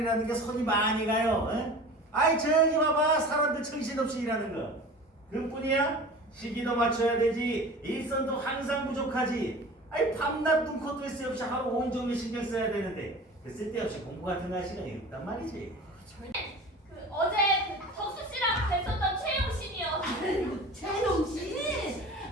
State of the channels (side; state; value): both; normal; correlation 0.38